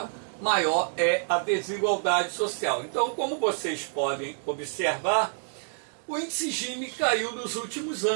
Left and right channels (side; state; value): left; silent; digital silence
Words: maior é a desigualdade social. Então, como vocês podem observar, o índice Gini caiu nos últimos